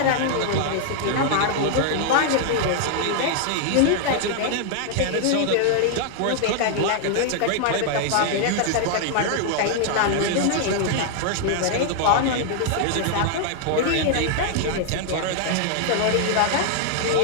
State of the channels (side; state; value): both; different; correlation 0.00